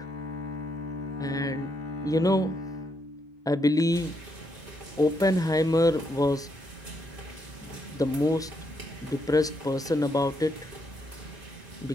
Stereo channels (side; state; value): both; normal; correlation 0.78